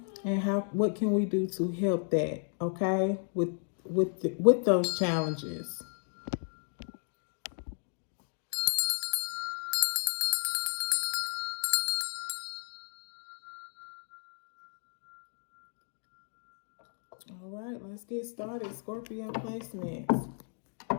and what can we do to help that, okay? With those challenges. All right, let's get started. Scorpio placements.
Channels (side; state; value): right; silent; 55 dB below the other